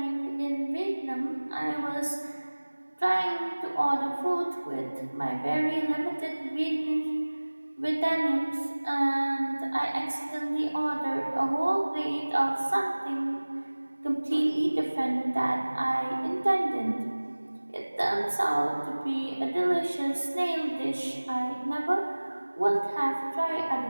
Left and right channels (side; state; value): both; inverted; correlation -1.00